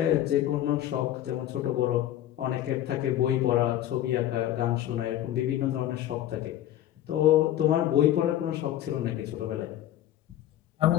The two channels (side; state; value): right; quieter; 12.5 dB